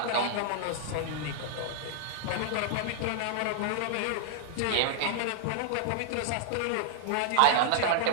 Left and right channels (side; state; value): both; different; correlation -0.01